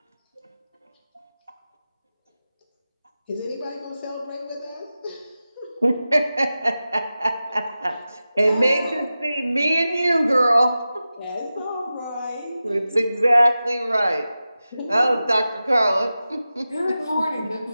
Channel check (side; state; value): both; inverted; correlation -0.94